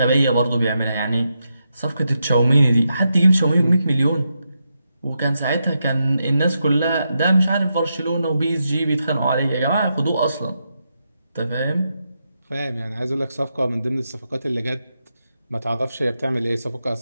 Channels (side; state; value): both; inverted; correlation -0.85